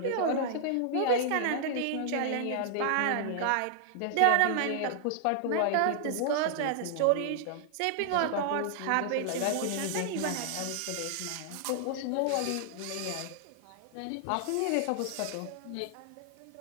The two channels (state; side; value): different; both; correlation 0.00